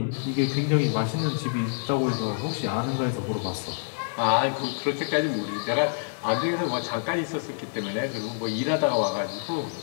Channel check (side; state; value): right; silent; 58 dB below the other